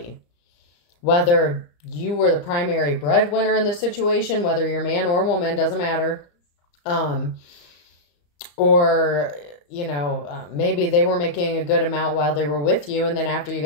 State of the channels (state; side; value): late; right; 35 ms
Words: Whether you were the primary breadwinner in the situation, whether you're man or woman, doesn't matter. Or, you know, maybe they were making a good amount while they were with you, and then after you